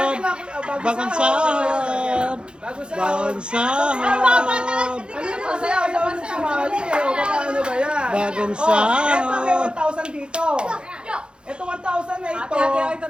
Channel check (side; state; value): left; late; 0.053 ms